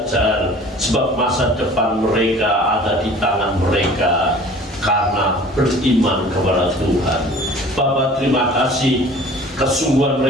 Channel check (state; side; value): normal; both; correlation 0.47